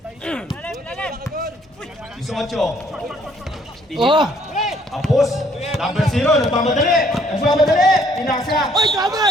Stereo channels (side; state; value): both; normal; correlation 0.64